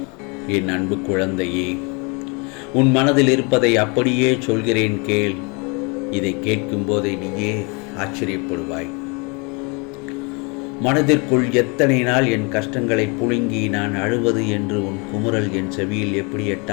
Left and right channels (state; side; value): quieter; right; 31.3 dB